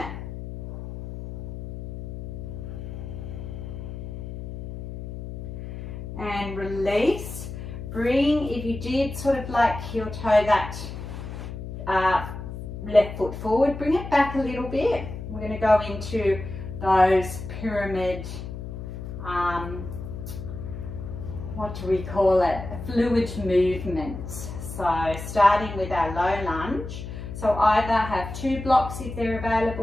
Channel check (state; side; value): noise; left; hum, 8 dB below the sound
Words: And release. Bring, if you did sort of like heel toe that left foot forward, bring it back a little bit. We're going to go into those pyramid, what do we call it? Fluid movements. So starting with our low lunge. So either have 2 blocks if they're